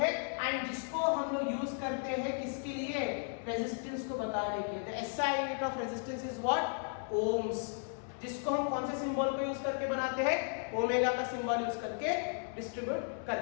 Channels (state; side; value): silent; right; 54 dB below the other